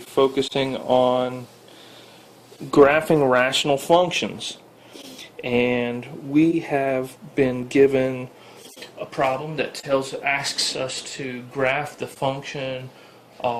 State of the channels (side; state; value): both; identical; correlation 1.00